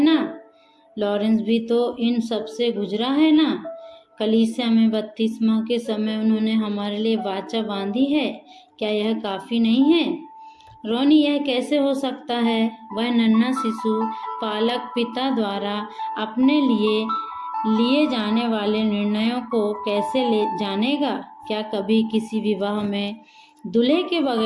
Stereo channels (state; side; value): identical; both; correlation 1.00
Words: ना। लॉरेंस भी तो इन सब से गुजरा है ना। कलीसिया में बपतिस्मा के समय उन्होंने हमारे लिए वाचा बांधी है। क्या यह काफी नहीं है? रोनी, यह कैसे हो सकता है? वह नन्हा शिशु पालक पिता द्वारा अपने लिए जाने वाले निर्णयों को कैसे ले जानेगा? क्या कभी किसी विवाह में दूल्हे के